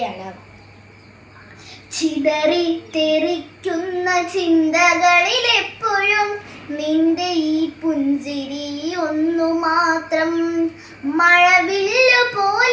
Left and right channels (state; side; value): identical; both; correlation 1.00